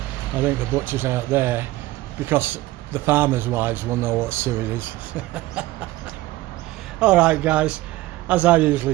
I think the butchers out there, because the farmers' wives will know what suet is. Alright guys, as I usually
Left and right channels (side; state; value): left; quieter; 17.5 dB